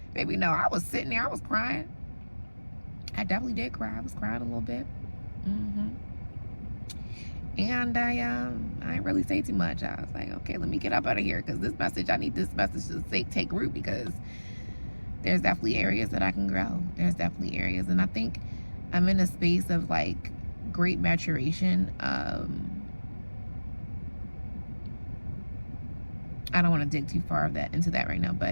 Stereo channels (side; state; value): both; inverted; correlation -1.00